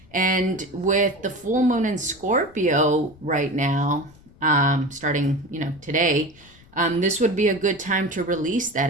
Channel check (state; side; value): noise; left; rumble, 25 dB below the sound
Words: And with the full moon in Scorpio right now, starting, today, this would be a good time to release that